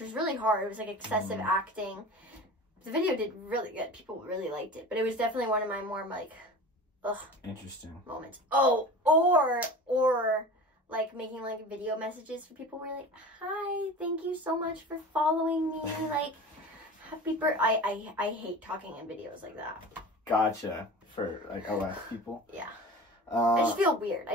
really hard. It was, like, excessive acting. The video did really good. People really liked it. But it was definitely one of my more, like, ugh. Interesting. Moments. Oh, or like, making, like, video messages for people where, like, hi, thank you so much for following me. Like, happy birthday. I hate talking in videos like that. Gotcha. For, like, OS people? Yeah. I just feel weird.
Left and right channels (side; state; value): both; normal; correlation 0.36